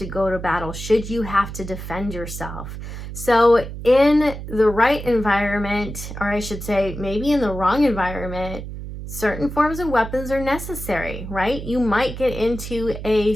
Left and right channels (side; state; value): right; noise; hum, 9 dB below the sound